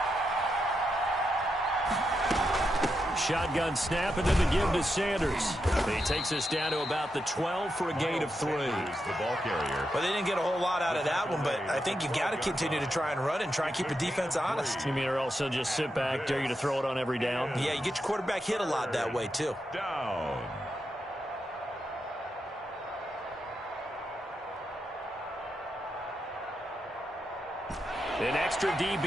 Shotgun snap, and then the give to Sanders. He takes us down to about the 12 for a gain of 3. The ball carrier. Well, they didn't get a whole lot out of that one, but I think you got to continue to try and run and try and keep the defense honest. You mean or also just sit back, dare you to throw it on every down? Yeah, you get your quarterback hit a lot that way, too. Down. extra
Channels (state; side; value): normal; both; correlation 0.85